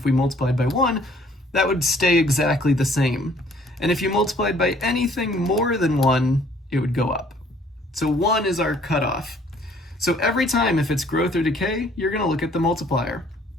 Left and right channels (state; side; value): normal; both; correlation 0.59